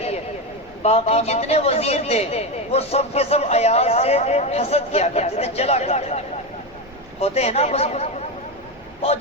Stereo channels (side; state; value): right; noise; rumble, 27 dB below the sound